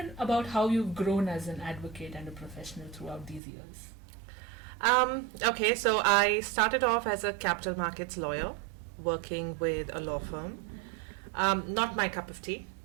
about how you've grown as an advocate and a professional throughout these years. Okay, so I started off as a capital markets lawyer working with a law firm. Not my cup of tea.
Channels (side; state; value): left; drops out; at 3.4 s